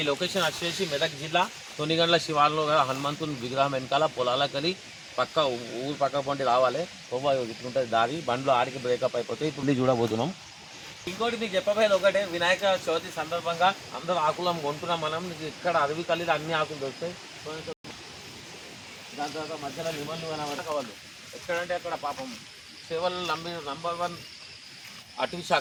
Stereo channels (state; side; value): identical; both; correlation 1.00